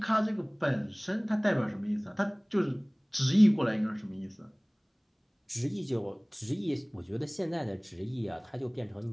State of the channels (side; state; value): both; identical; correlation 1.00